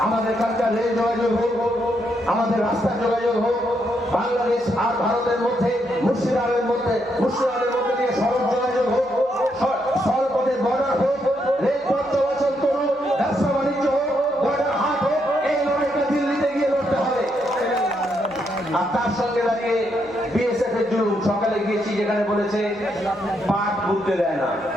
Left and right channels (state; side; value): noise; right; hum, 30 dB below the sound